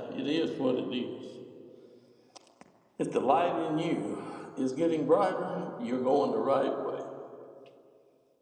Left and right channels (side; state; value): both; identical; correlation 1.00